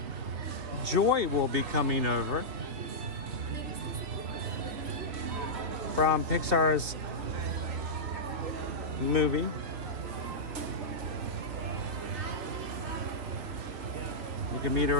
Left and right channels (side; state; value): left; late; 3.0 ms